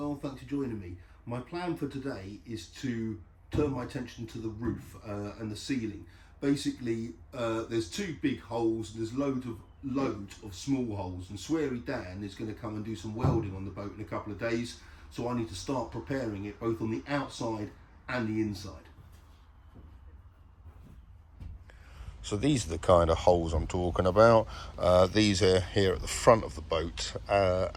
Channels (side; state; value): both; identical; correlation 1.00